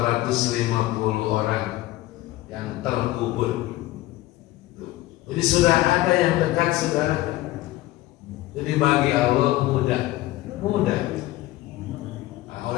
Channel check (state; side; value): quieter; right; 16.9 dB